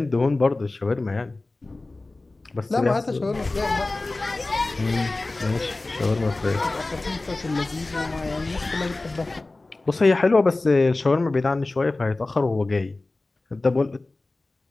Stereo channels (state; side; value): quieter; right; 3.1 dB